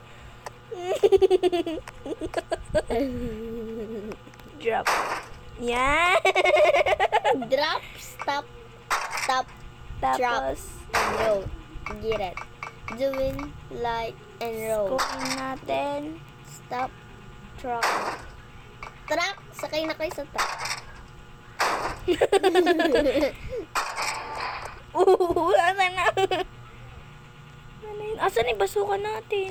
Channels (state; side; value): identical; both; correlation 1.00